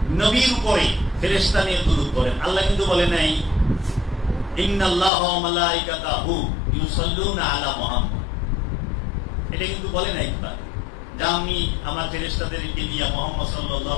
নবীর উপরে ফেরেশতা নিয়ে দুরূদ করেন। আল্লাহ কিন্তু বলে নাই ইন্নাল্লাহা ওয়া মালাইকাতাহু ইউসাল্লুনা আলা মুহাম্মদ, এটা কিন্তু বলে নাই যে আমি আমার ফেরেশতাদেরকে দিয়ে মুহাম্মদ সাল্লাল্লাহু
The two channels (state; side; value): drops out; right; at 5.1 s